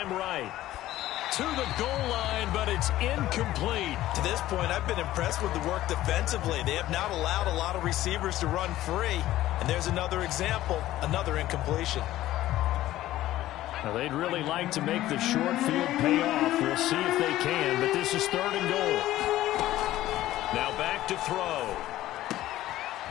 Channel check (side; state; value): right; quieter; 14.8 dB